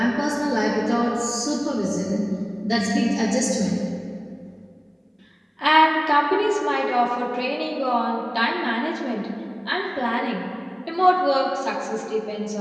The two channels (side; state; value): both; identical; correlation 1.00